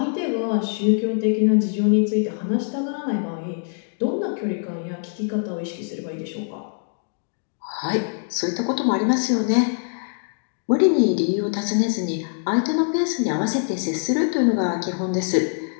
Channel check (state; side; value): silent; right; 63 dB below the other